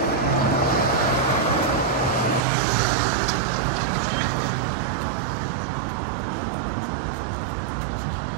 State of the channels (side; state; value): left; drops out; at 2.4 s